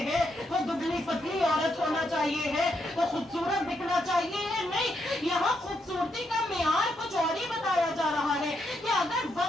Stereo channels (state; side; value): normal; both; correlation 0.79